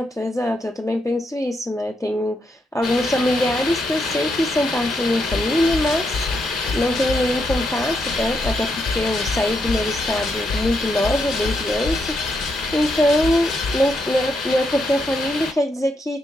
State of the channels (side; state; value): both; normal; correlation 0.80